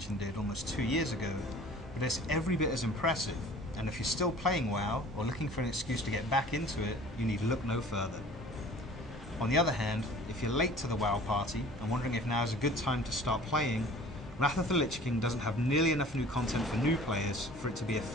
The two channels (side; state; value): both; normal; correlation 0.47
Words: did almost 2 years ago, but it's every bit as impressive, and if you're still playing WoW, or looking for an excuse to get back into it, you need look no further. On the other hand, if you're late to the WoW party, and wondering if now is a good time to start playing, Wrath of the Lich King doesn't have nearly enough new content for new players for it to be a